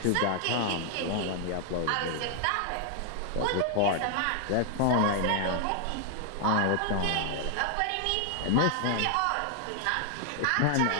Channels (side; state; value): both; different; correlation 0.00